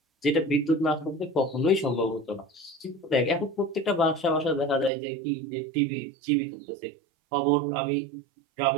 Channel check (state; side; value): drops out; left; at 4.9 s